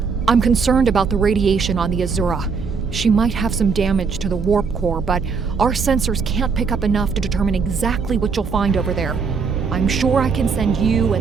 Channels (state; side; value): quieter; left; 5.4 dB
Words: I'm concerned about the radiation on the Azura. She might have some damage to the warp core, but our sensors can't pick up enough to determine exactly what you'll find over there. I'm sure I can send you